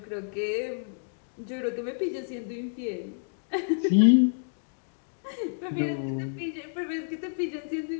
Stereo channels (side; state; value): right; silent; digital silence